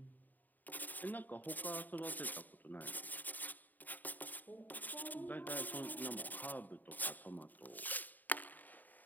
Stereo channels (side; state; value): right; late; 0.086 ms